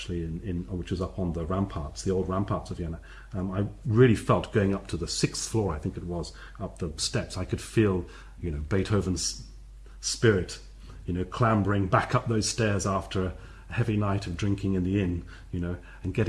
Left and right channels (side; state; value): both; identical; correlation 1.00